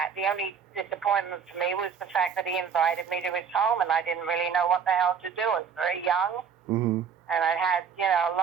the only disappointment for me was the fact that he invited me to his home and I didn't really know what the hell to do. I was very young Mhm. and I had, a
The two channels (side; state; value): left; quieter; 6.8 dB